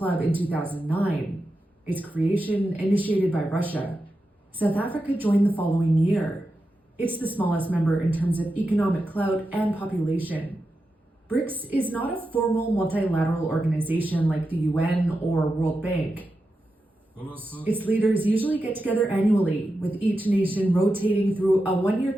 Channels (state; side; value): normal; both; correlation 0.89